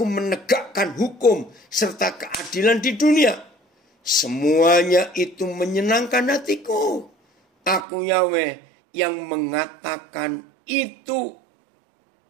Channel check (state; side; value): drops out; left; at 7.9 s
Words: menegakkan hukum serta keadilan di dunia. Semuanya itu menyenangkan hatiku. Aku Yahweh yang mengatakan itu.